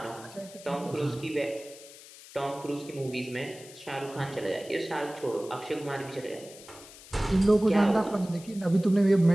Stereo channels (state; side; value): noise; left; hiss, 19 dB below the sound